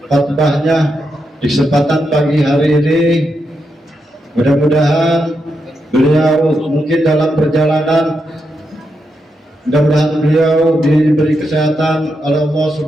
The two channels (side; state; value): both; normal; correlation 0.84